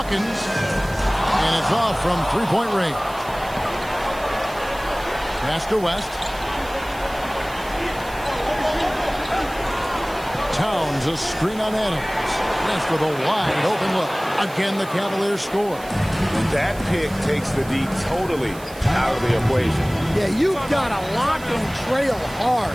and it's off from three-point range. Pass to West. Towns, a screen on Adams. West with a wide open look. Again, the Cavaliers score. That pick takes the D totally out of the equation. Yeah, you've got to lock and trail hard.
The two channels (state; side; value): noise; right; hiss, 19 dB below the sound